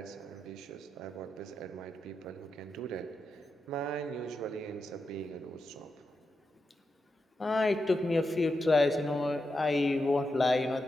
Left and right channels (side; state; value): both; normal; correlation 0.87